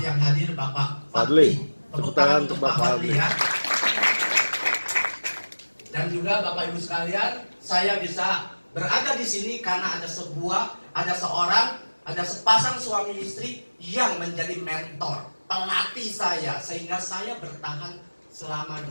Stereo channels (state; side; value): inverted; both; correlation -1.00